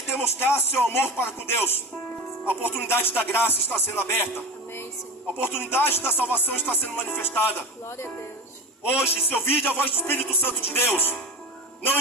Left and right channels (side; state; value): both; normal; correlation 0.28